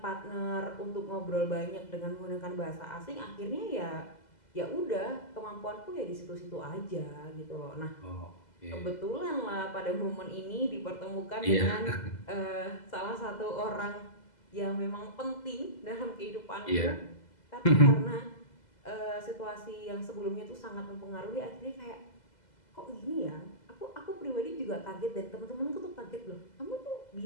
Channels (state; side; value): late; right; 2.0 ms